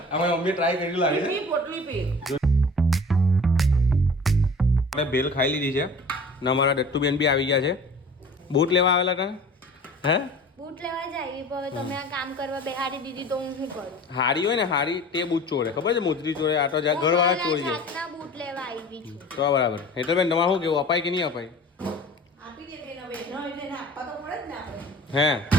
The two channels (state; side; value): normal; both; correlation 0.42